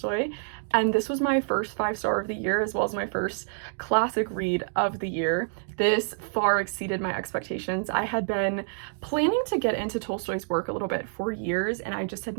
and this was my first 5-star of the year, as well as my first classic read of the year. This far exceeded my expectations. I had been planning to get into Tolstoy's work a little bit for years, and I just had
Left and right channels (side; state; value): left; silent; digital silence